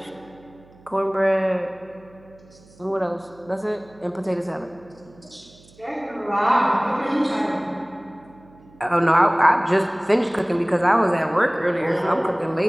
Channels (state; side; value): noise; right; hum, 26 dB below the sound